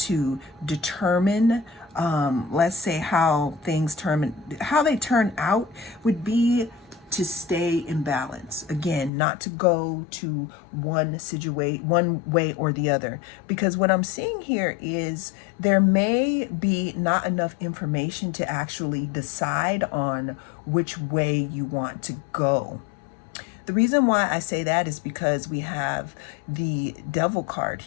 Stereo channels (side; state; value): right; drops out; at 9.1 s